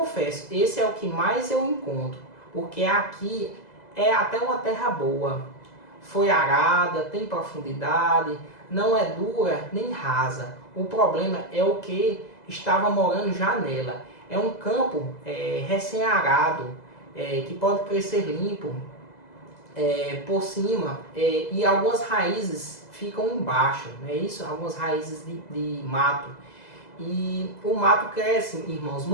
esse é o que mais eu encontro. porque aqui é até uma terra boa. Foi arada, tem profundidade, não é dura nem rasa. O problema é o que estava morando já nela. É um campo recém-arado, que pode crescer limpo por cima, e algumas raízes ficam embaixo, não é isso? Algumas raízes de mato. E o mato cresce, irmãos,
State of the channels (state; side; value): late; right; 2.0 ms